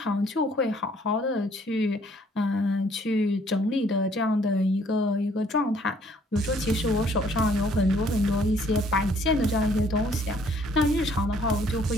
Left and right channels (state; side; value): normal; both; correlation 0.62